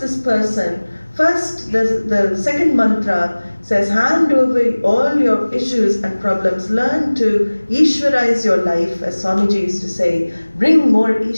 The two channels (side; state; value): both; inverted; correlation -1.00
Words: person, first the second mantra says, hand over all your issues and problems. Learn to Ishvarize your life, as Swamiji used to say. Bring more